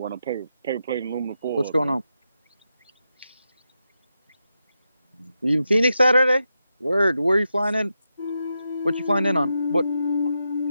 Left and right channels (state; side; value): inverted; both; correlation -0.87